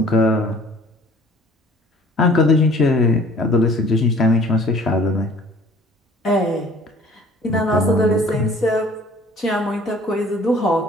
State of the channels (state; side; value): normal; both; correlation 0.52